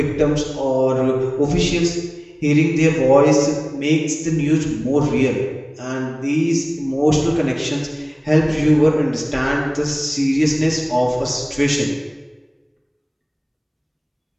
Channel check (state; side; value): identical; both; correlation 1.00